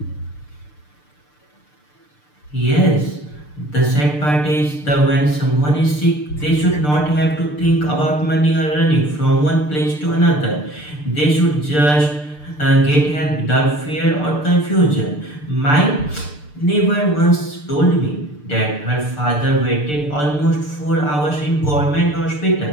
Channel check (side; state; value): right; late; 6.7 ms